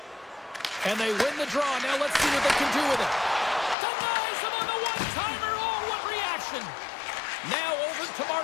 And they win the draw. Now let's see what they can do with it. Denies him on the one-timer. Oh, what reaction. Now over to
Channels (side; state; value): right; drops out; at 3.8 s